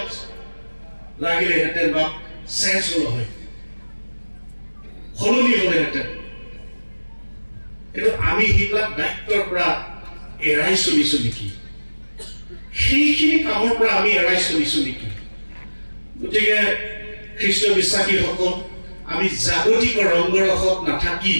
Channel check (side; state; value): both; inverted; correlation -1.00